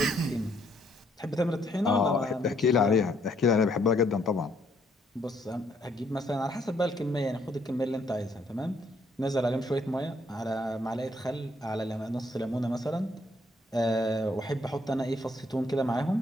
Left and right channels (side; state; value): both; normal; correlation 0.69